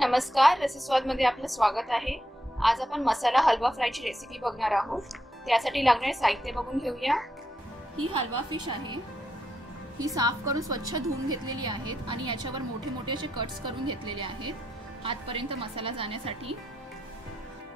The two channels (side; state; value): both; normal; correlation 0.82